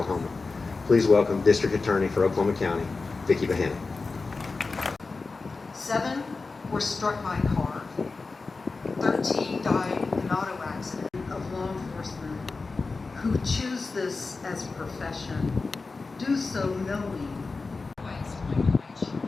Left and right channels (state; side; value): quieter; right; 4.0 dB